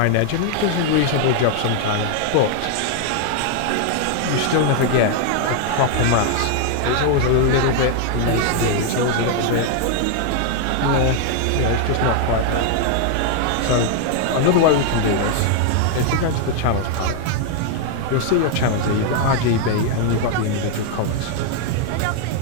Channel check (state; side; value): different; both; correlation 0.00